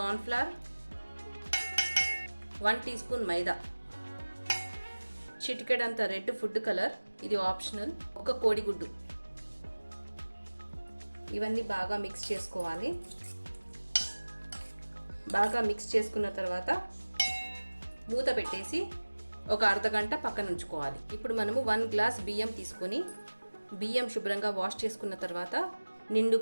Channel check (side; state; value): both; inverted; correlation -1.00